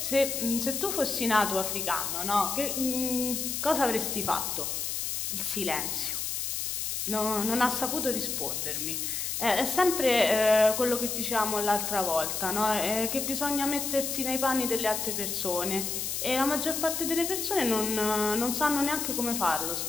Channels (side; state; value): left; noise; hiss, 2 dB below the sound